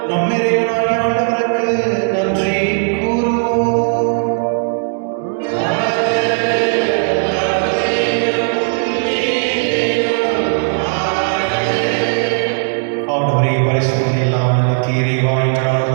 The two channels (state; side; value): silent; left; 68 dB below the other